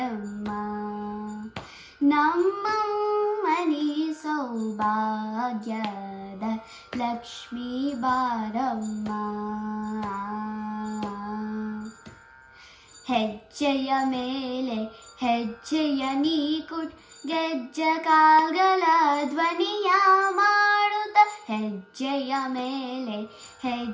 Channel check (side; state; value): both; identical; correlation 1.00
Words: ನಮ್ಮಮ್ಮನಿ ಸೌಭಾಗ್ಯದ ಲಕ್ಷ್ಮೀ ಬಾರಮ್ಮ. ಹೆಜ್ಜೆಯ ಮೇಲೆ ಹೆಜ್ಜೆಯ ನೀ ಕುಟ್ ಗೆಜ್ಜೆ ಕಾಲ್ಗಳ ಧ್ವನಿಯ ಮಾಡುತ್ತ, ಹೆಜ್ಜೆಯ ಮೇಲೆ